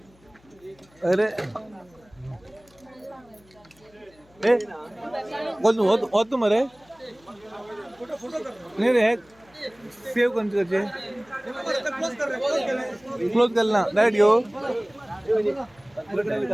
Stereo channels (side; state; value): left; noise; hum, 30 dB below the sound